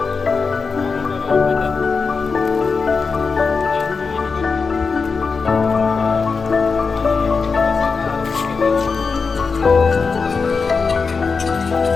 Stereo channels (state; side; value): quieter; right; 4.9 dB